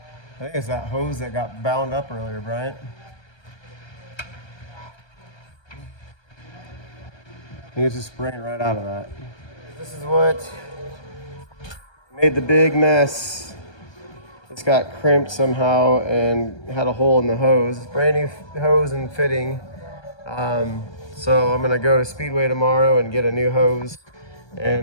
I think it's that hose that got bound up earlier, Bryant. I think it's just spraying right out of that. This is what made the big mess. It's got crimped somehow and had a hole in the hose. Brand new hose and fitting. So I'm gonna go to Speedway tomorrow and get a new hose.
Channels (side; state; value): right; late; 1.3 ms